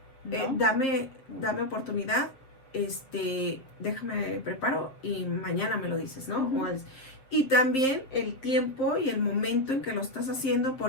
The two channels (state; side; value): late; right; 7.5 ms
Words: dame oportunidad, déjame preparo y mañana me lo dices, ¿no? Y también el tiempo y el momento en que lo estás haciendo,